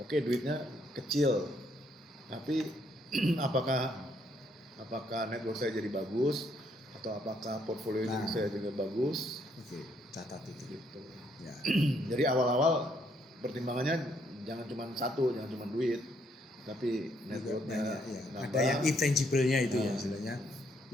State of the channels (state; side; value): normal; both; correlation 0.71